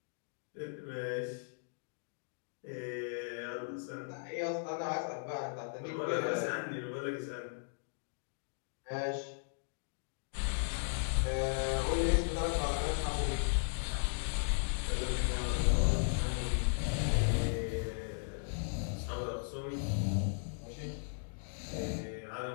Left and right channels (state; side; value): silent; right; digital silence